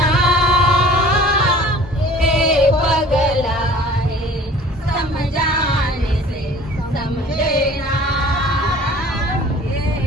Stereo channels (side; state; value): both; normal; correlation 0.48